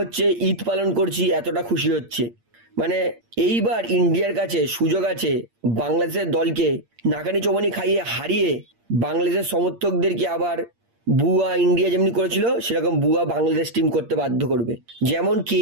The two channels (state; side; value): late; left; 8.6 ms